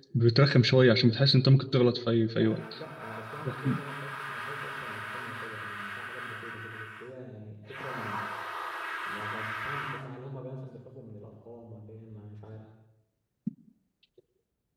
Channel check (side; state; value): both; identical; correlation 1.00